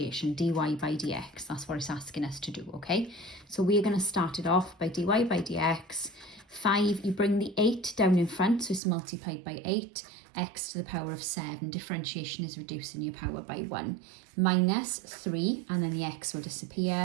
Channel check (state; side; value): drops out; left; at 8.8 s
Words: dy by dx. That's what it's asking us to do, okay? So we are going to start it off by dy by dx. 5, you bring the 8 down in front, so it's multiplied by 8, x to the power of 7. Differentiation is reducing your power by 1. Minus 3, and then the x will